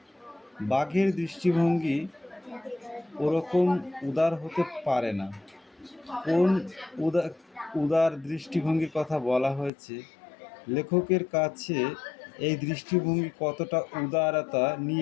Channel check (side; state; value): right; drops out; at 9.7 s